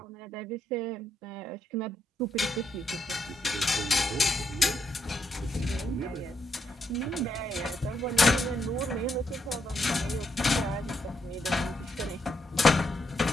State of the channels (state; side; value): normal; both; correlation 0.78